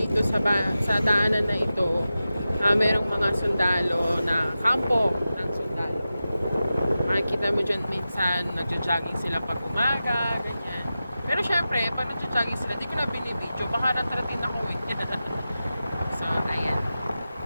sa daanan na ito. Merong mga sundalo na kampo ng sundalo. Makikita mo dyan minsan, nagja-jogging sila pag umaga, ganyan. Pero syempre, pag nagja-jogging sila, di ko na binibidyo, baka natratin ako eh. So, ayan.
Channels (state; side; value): inverted; both; correlation -0.93